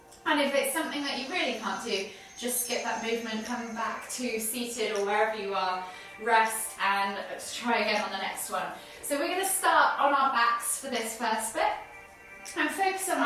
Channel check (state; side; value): identical; both; correlation 1.00